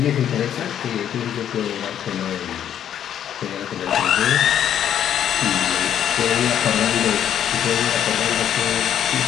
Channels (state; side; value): quieter; right; 9.9 dB